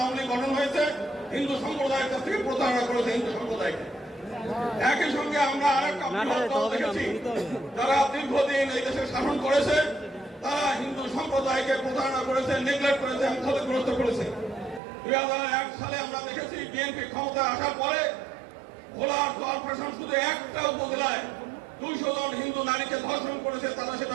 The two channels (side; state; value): left; drops out; at 14.8 s